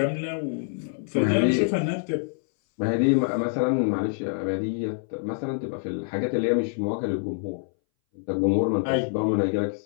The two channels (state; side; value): silent; right; 60 dB below the other